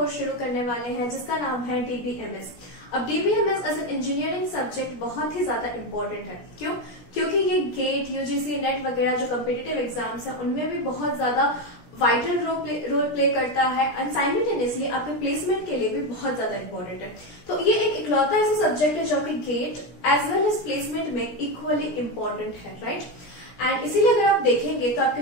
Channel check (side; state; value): right; late; 17 ms